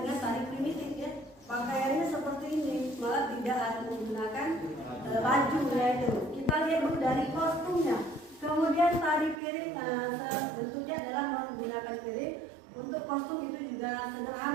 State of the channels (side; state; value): left; drops out; at 9.4 s